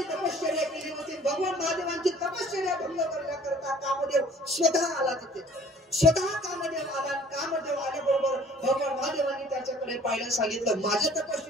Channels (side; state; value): both; normal; correlation 0.52